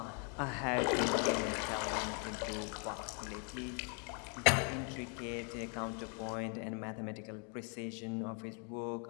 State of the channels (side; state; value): right; quieter; 39.1 dB